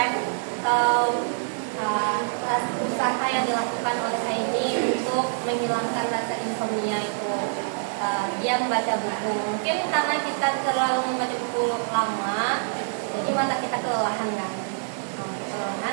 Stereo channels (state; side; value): silent; left; digital silence